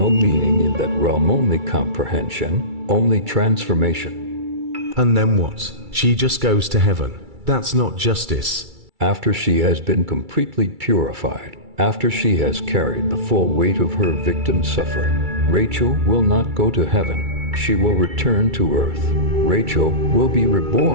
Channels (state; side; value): late; left; 2.3 ms